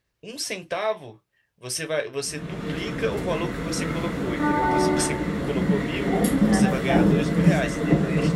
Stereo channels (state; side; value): identical; both; correlation 1.00